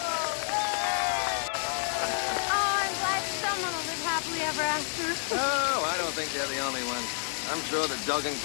Ever after? Oh, I don't think they're the only ones. I'm sure that Doug and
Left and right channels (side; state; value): right; silent; digital silence